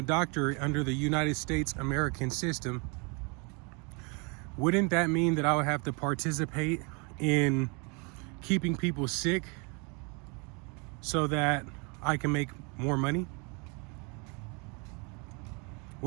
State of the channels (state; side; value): quieter; left; 32.4 dB